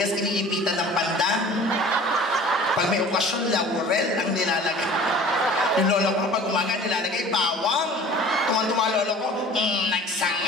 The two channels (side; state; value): both; normal; correlation 0.44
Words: iniipitan ng pandan. Pag may okasyon, laurel ang nilalagay. Yung lola ko, pag umaga, nilalagay bawang. Tuman-tuma lola ko,